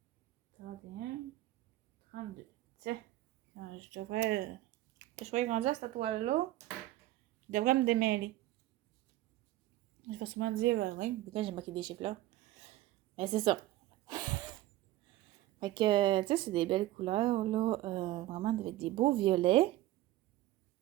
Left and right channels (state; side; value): quieter; left; 15.8 dB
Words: 31, 32. Tiens, je devrais grandir cette toile-là. Je devrais me démêler. Je vais souvent dire, oui, pourquoi j'ai marqué des chiffres là? Mais c'est ça. Fait que, tu sais, c'est des belles couleurs, là. Vraiment avec des beaux violets.